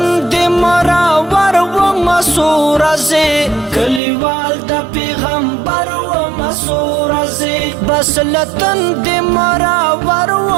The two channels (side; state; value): left; drops out; at 4.0 s